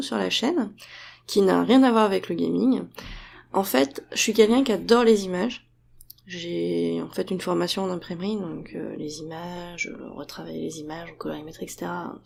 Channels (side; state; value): both; identical; correlation 1.00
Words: sur la chaîne, qui n'a rien à voir avec le gaming. En fait, je suis quelqu'un qui adore les images. J'ai en fait une formation en imprimerie, donc les images, retravailler les images, colorimétrie, etc.